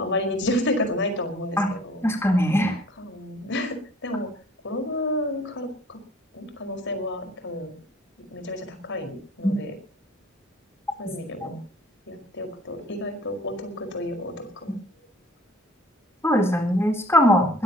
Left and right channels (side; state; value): both; normal; correlation 0.51